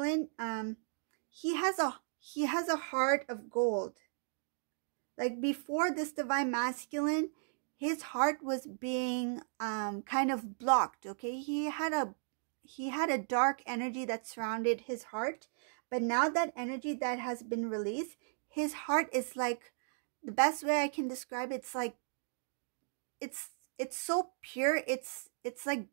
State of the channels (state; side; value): silent; left; digital silence